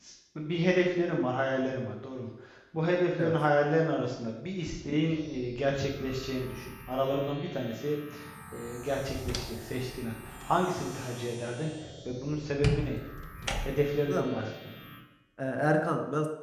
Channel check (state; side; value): identical; both; correlation 1.00